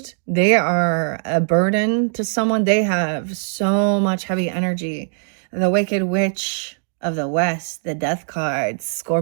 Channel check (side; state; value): left; silent; digital silence